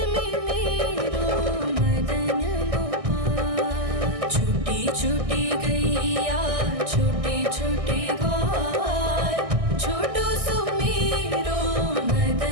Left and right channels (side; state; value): left; late; 1.6 ms